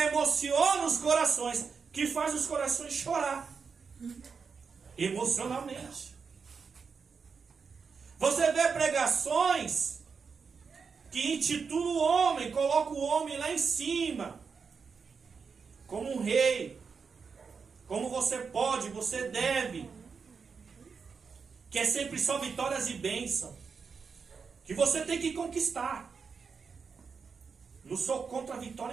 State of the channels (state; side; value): quieter; left; 5.5 dB